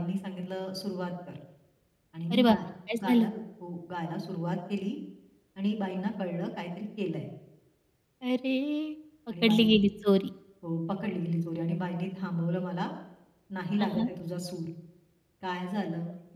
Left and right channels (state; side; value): identical; both; correlation 1.00